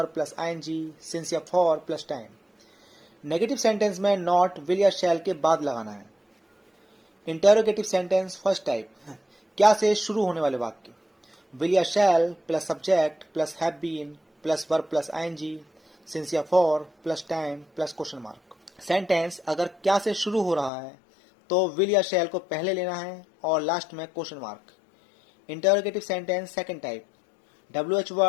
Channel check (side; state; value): right; drops out; at 20.7 s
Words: plus ING since या for plus time. Negative sentence में नॉट विल या शैल के बाद लगाना है। इंटरोगेटिव सेंटेंस फर्स्ट टाइप, क्या से शुरू होने वाले वाक्य, विल या shall plus subject plus have been plus verb plus ING since या for plus time plus question mark. Sentence अगर क्या से शुरू हो रहा है तो विल या शैल को पहले लेना है और लास्ट में question mark. Interrogative sentence second type, WH